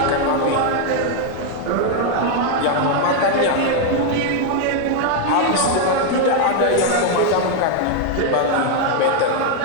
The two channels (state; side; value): different; both; correlation 0.01